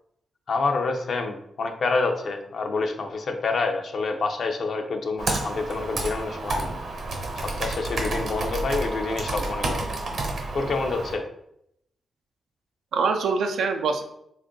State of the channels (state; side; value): normal; both; correlation 0.80